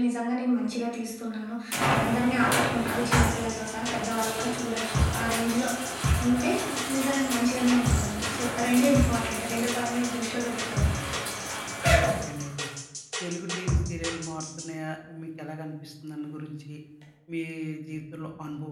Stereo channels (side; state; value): both; identical; correlation 1.00